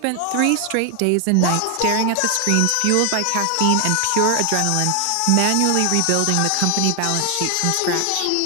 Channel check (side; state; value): both; different; correlation 0.00